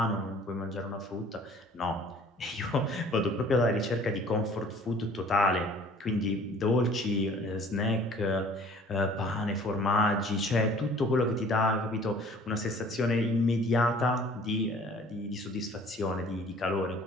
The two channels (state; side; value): normal; both; correlation 0.51